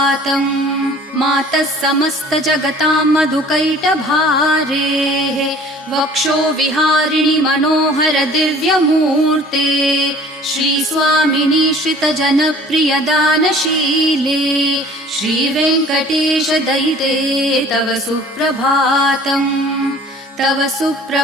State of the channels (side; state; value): both; normal; correlation 0.49